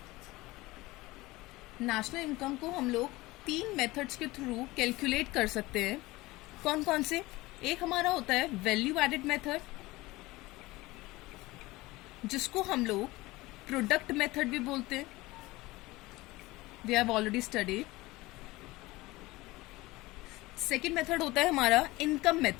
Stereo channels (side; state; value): right; quieter; 20.2 dB